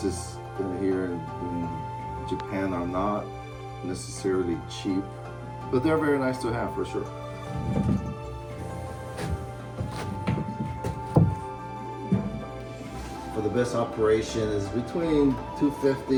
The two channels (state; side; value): identical; both; correlation 1.00